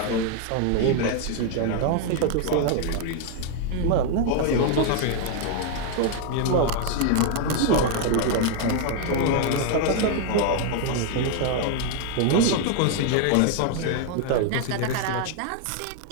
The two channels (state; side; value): different; both; correlation 0.00